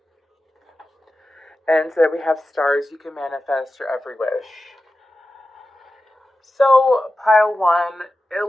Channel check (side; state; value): both; normal; correlation 0.93